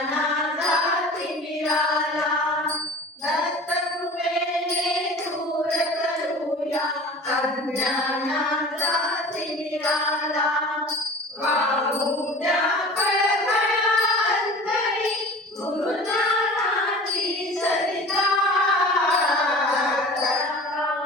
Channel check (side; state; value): both; normal; correlation 0.40